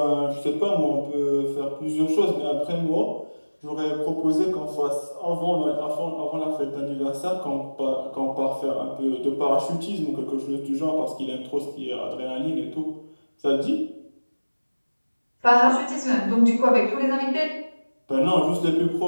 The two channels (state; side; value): inverted; both; correlation -1.00